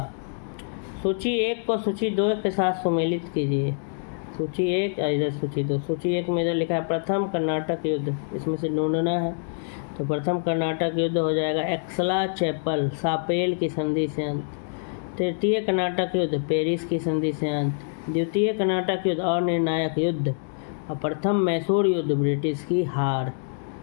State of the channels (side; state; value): right; silent; 61 dB below the other